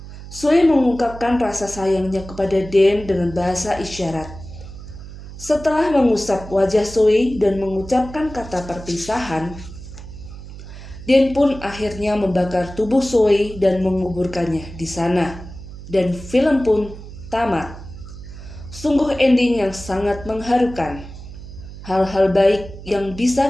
Zoe mengungkapkan rasa sayangnya kepada Dan dengan bahasa isyarat. Setelah mengusap wajah Zoe dan mengucapkan kata perpisahan, Dan pun akhirnya membakar tubuh Zoe dan menguburkannya di sana. Dan film pun tamat. Sungguh ending yang sangat mengharukan. Hal-hal baik yang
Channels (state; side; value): noise; right; hum, 14 dB below the sound